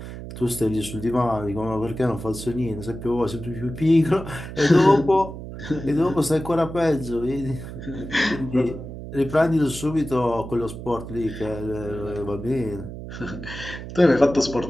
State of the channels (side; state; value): right; noise; hum, 10 dB below the sound